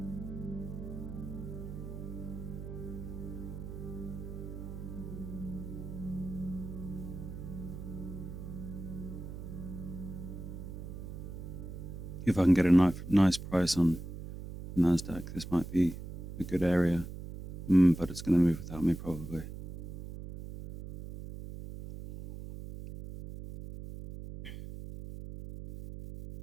If I can get a nice price on Nasdaq, this might be a good area, but it's going to move without me probably.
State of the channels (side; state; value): right; noise; hum, 9 dB below the sound